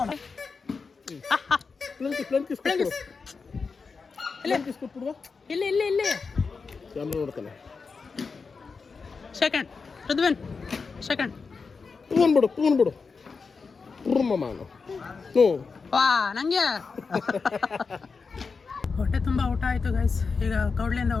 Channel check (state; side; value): quieter; right; 4.8 dB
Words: ಇಲ್ಲಿ ಇಲ್ಲಿ ಇಲ್ಲಿ ಸೆಕೆಂಡ್ ಋದ್ವನ್ ಸೆಕೆಂಡ್. ವಾ ನಂಗೆ ಹೊಟ್ಟೆ ತುಂಬ ಊಟ ಆಯಿತು ಗೈಸ್. ಈಗ ಕೌಡ್ಲಿಯಿಂದ